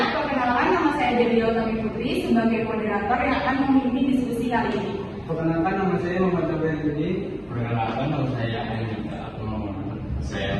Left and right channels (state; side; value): identical; both; correlation 1.00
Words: perkenalkan, nama saya Dewi Utami Putri sebagai moderator yang akan memimpin diskusi kali ini. Perkenalkan, nama saya Muhammad Jabar Yudi. Perkenalkan, nama saya Anita atau saya